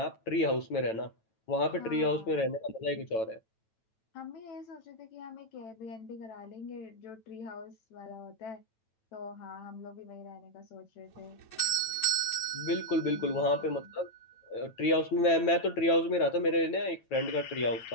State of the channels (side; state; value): right; late; 9.1 ms